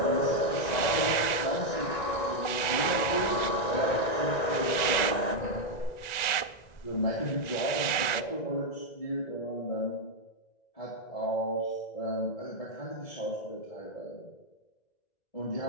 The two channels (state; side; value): late; right; 1.9 ms